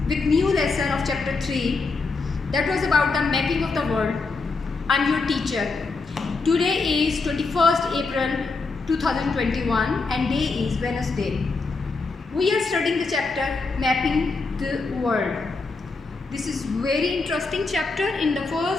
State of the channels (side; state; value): right; quieter; 4.0 dB